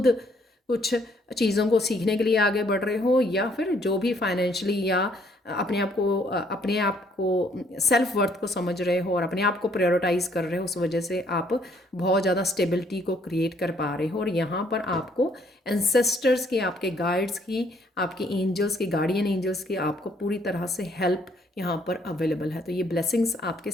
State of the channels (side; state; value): both; normal; correlation 0.65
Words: कुछ चीज़ों को सीखने के लिए आगे बढ़ रहे हो या फिर जो भी फाइनेंशियली या अपने आप को सेल्फ वर्थ को समझ रहे हो और अपने आप को प्रायोरिटाइज कर रहे हो, उस वजह से आप बहुत ज़्यादा स्टेबिलिटी को क्रिएट कर पा रहे हो। और यहाँ पर आपको एंसेस्टर्स की, आपके गाइड्स की, आपके एंजल्स की, गार्डियन एंजल्स की आपको पूरी तरह से हेल्प यहाँ पर अवेलेबल है। तो ये ब्लेसिंग्स आपके